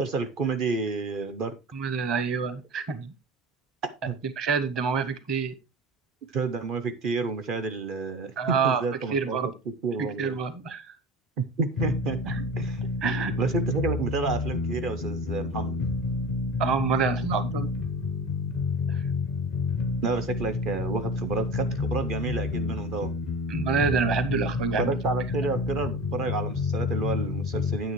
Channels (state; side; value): normal; both; correlation 0.34